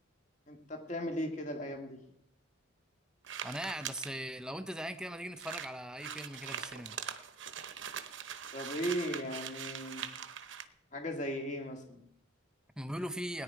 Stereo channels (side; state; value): both; normal; correlation 0.47